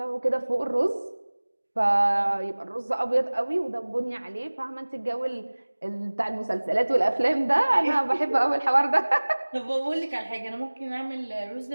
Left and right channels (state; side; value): inverted; both; correlation -1.00